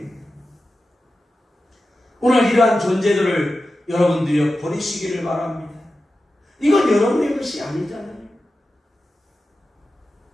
오늘 이러한 존재들을 여러분들이 버리시기를 바랍니다. 이건 여러분의 것이 아니잖아요.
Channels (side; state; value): both; normal; correlation 0.93